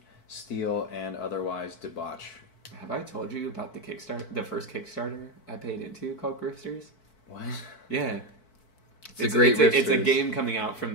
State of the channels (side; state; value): right; late; 4.6 ms